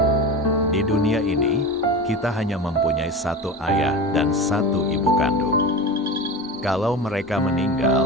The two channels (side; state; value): both; normal; correlation 0.27